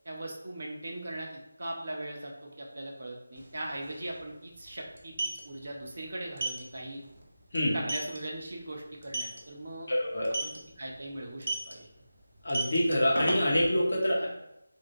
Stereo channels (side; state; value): both; inverted; correlation -0.93